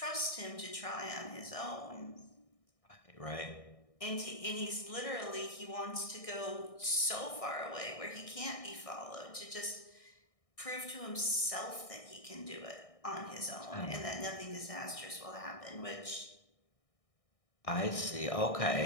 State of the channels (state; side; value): late; right; 1.6 ms